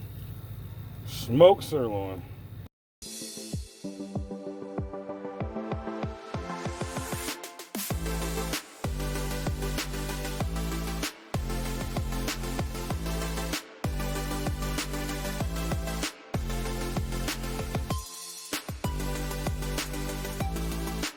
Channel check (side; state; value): both; identical; correlation 1.00